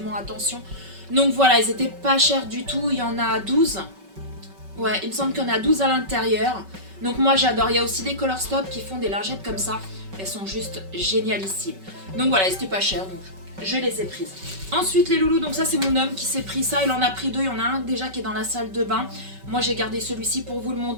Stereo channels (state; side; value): late; left; 5.3 ms